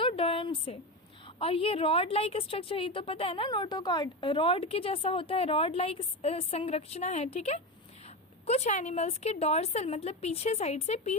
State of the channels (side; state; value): both; normal; correlation 0.18